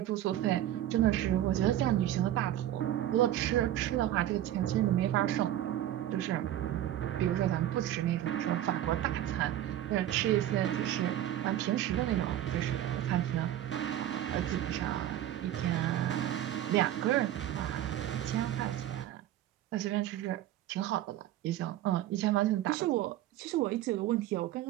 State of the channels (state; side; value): quieter; left; 12.5 dB